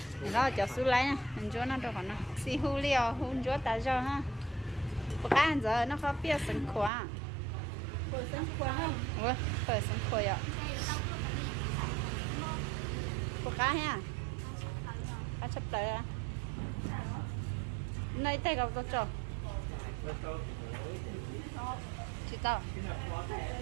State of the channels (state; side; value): drops out; left; at 6.9 s